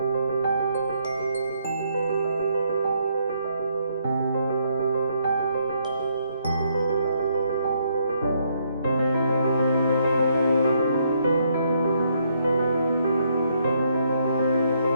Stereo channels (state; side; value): inverted; both; correlation -0.73